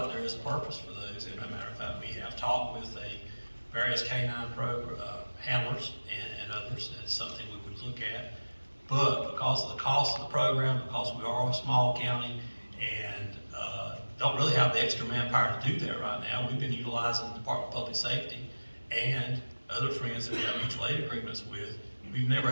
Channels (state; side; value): inverted; both; correlation -1.00